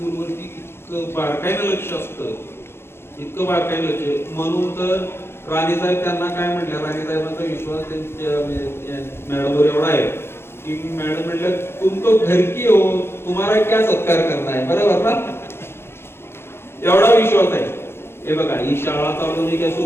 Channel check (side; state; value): right; late; 0.12 ms